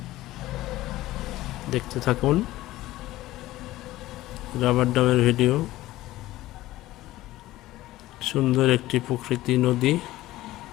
দেখতে থাকুন রাবার ড্যামের ভিডিও। সুন্দর একটি প্রকৃতি নদী,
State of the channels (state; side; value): quieter; right; 16.4 dB